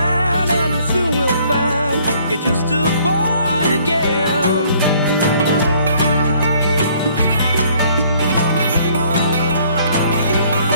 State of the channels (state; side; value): inverted; both; correlation -0.61